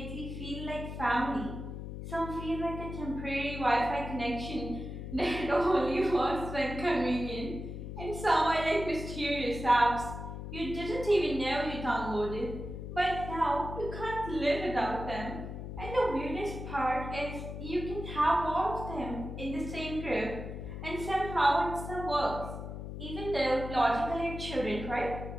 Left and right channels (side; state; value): left; noise; hum, 8 dB below the sound